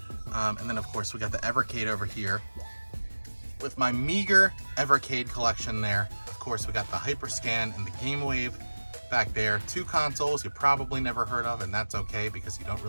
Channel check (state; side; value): inverted; both; correlation -1.00